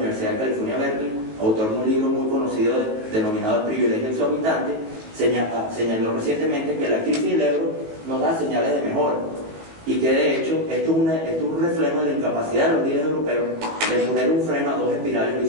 de California, Berkeley, autor de un libro muy conocido denominado El privilegio exorbitante, señaló recientemente que la crisis del euro nos da señales de mejora y que de hecho esto es un reflejo de la incapacidad de los líderes europeos de poner un freno a 2 espirales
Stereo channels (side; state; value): left; late; 19 ms